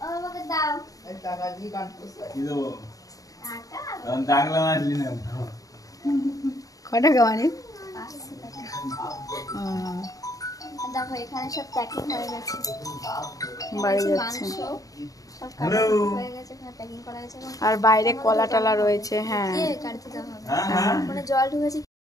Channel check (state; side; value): late; right; 0.17 ms